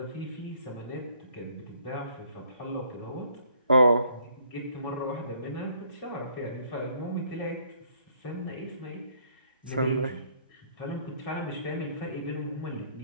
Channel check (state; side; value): inverted; both; correlation -0.63